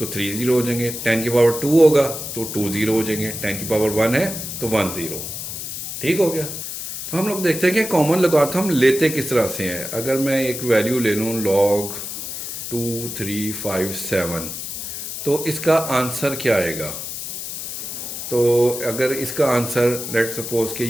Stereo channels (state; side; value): noise; left; hiss, 7 dB below the sound